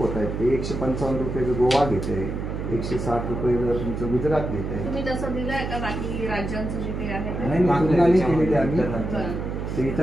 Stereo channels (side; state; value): right; noise; hum, 4 dB below the sound